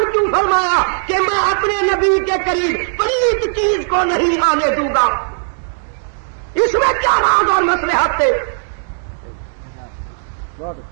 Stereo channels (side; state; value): left; silent; digital silence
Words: کیوں فرمایا کہ میں اپنے نبی کے قریب پلیت چیز کو نہیں آنے دوں گا؟ اس میں کیا راز اور مصلحت تھے؟